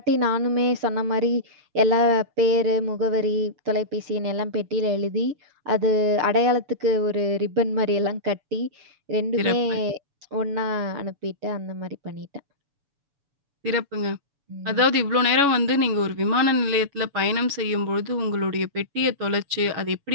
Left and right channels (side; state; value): left; late; 7.0 ms